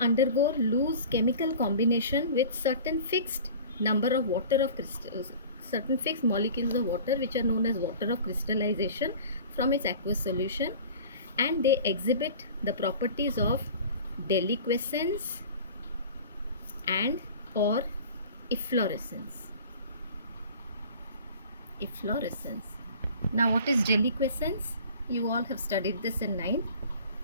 loose chemical combination with certain fixed number of water of crystals, certain fixed molecules of water which are known as water of crystallization from its aqueous solution, and they exhibit the properties of deliquescence and or efflorescence. Efflorescence. Now what is deliquescence? You all have studied this in 9th.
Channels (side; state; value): both; inverted; correlation -0.42